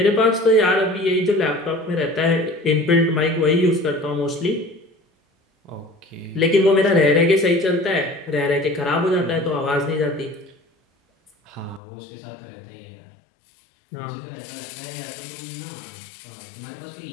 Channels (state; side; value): drops out; right; at 11.8 s